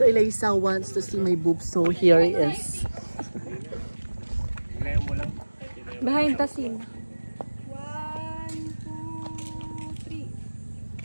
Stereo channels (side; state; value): both; inverted; correlation -1.00